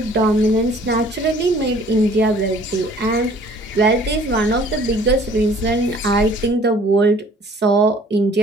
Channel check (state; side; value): normal; both; correlation 0.54